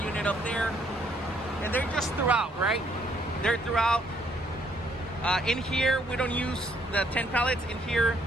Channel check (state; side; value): normal; both; correlation 0.68